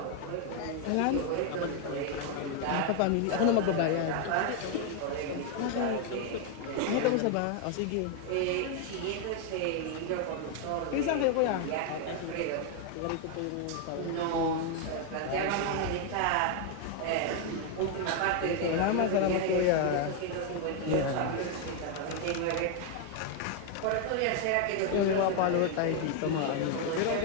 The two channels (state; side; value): different; both; correlation 0.00